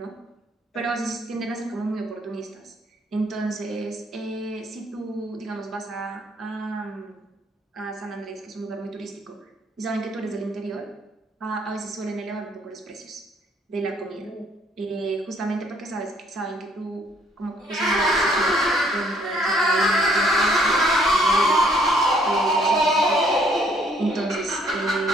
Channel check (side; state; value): both; normal; correlation 0.65